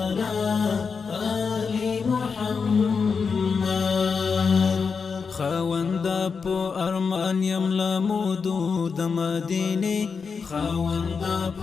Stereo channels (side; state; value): right; quieter; 5.5 dB